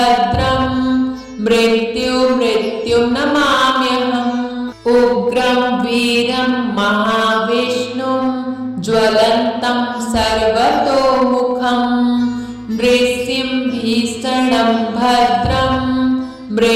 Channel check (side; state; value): both; identical; correlation 1.00